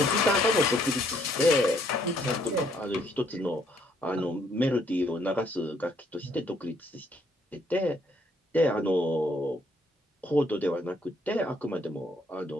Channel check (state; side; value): normal; both; correlation 0.68